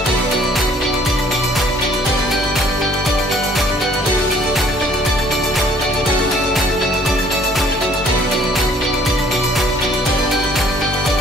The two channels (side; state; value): both; normal; correlation 0.58